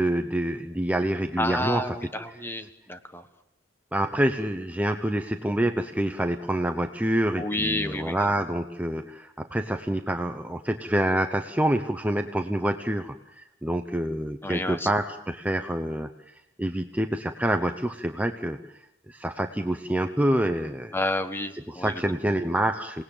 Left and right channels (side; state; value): both; normal; correlation 0.82